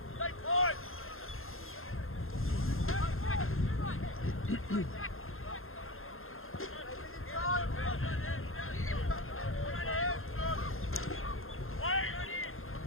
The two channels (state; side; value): late; right; 0.61 ms